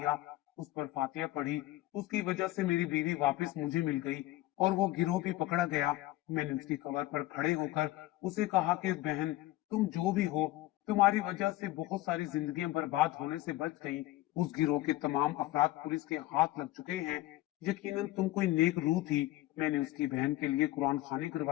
उस पर फातिया पढ़ी। उसकी वजह से मेरी बीवी वापस मुझे मिल गई और वो गिरोह भी पकड़ा गया। मैंने उसकी कब्र पर खड़े होकर उसे कहा कि बहन, तुम जो भी हो, तुम्हारी वजह से बहुत सारी जिंदगियां बर्बाद होने से बच गई। उस गिरोह के तमाम अफराद पुलिस के हाथ लग चुके हैं। यकीनन तुम कोई नेक रूह थी। मैंने उसकी बहन के लिए कुरान खानी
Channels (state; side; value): quieter; right; 16.6 dB